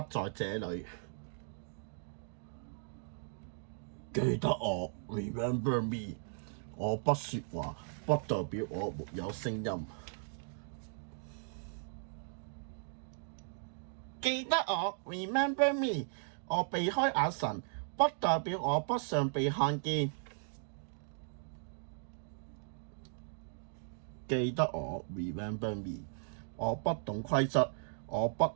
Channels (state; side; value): silent; left; digital silence